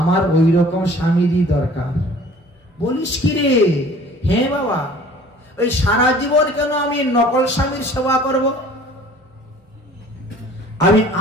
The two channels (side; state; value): both; normal; correlation 0.50